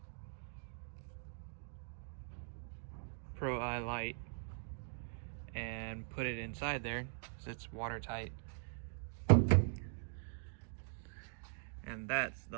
Pro Eye light and put it inside there so it's watertight. And that's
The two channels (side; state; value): left; silent; digital silence